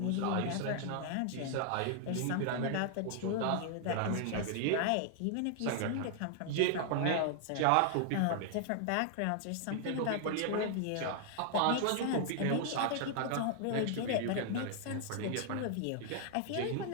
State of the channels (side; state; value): both; different; correlation 0.00